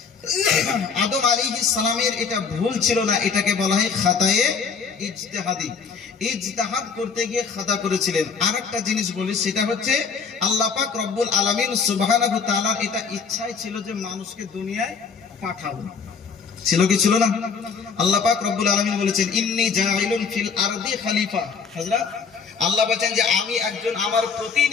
আদম আলাইহিস সালামের এটা ভুল ছিল না, এটাকে বলা হয় খাতায়ে ইজতিহাদি। ইজতিহাদ করতে গিয়ে খাতা করেছিলেন। আরেকটা জিনিস বলি, সেটা হচ্ছে আল্লাহ পাক রব্বুল আলামিন সুবহানাহু ওয়া তাআলার এটা ইচ্ছাই ছিল যে মানুষকে দুনিয়ায় পাঠাবো। ছিল কি ছিল না? আল্লাহ পাক রব্বুল আলামিন বলেছেন ইন্নী জাইলুন ফিল আরদি খলিফা। হযরত আল্লাহ বলেন যে আমি একজন আমার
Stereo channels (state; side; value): quieter; right; 5.6 dB